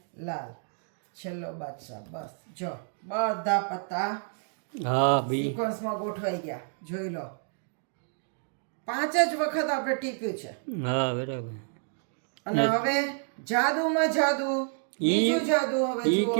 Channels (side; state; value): left; silent; 58 dB below the other